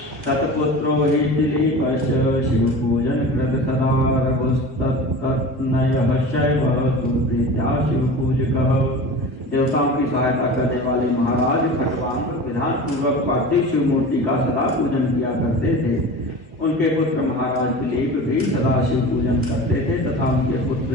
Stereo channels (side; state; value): both; normal; correlation 0.34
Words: तत्पुत्रो हि दिलीपश्च शिव पूजन कृत सदा रघुस्तत्तनयः शैवः सुप्रीत्या शिव पूजकः। देवताओं की सहायता करने वाले महाराज खट्वांग विधान पूर्वक पार्थिव शिव मूर्ति का सदा पूजन किया करते थे। उनके पुत्र महाराज दिलीप भी सदा शिव पूजन करते थे तथा उनके पुत्र